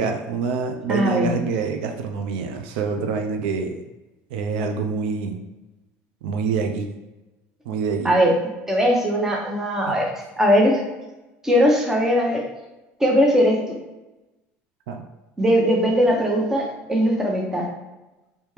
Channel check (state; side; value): normal; both; correlation 0.59